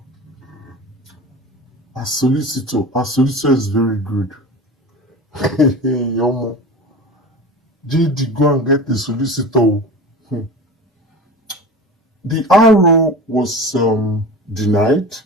solicitor. Our solicitor is very good. Yomo. JD, go and get the solicitor. The RO was denied.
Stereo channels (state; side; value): normal; both; correlation 0.33